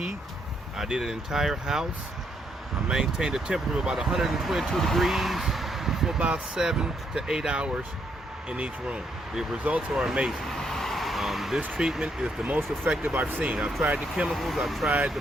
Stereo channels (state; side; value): normal; both; correlation 0.75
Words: I did an entire house. I maintained a temperature of about 122 degrees for about 7 to 8 hours in each room. The results are amazing. This treatment is the most effective I've seen. I've tried the chemicals, I've tried the